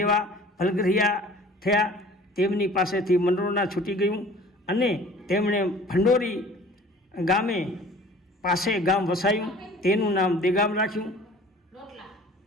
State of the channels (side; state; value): both; normal; correlation 0.48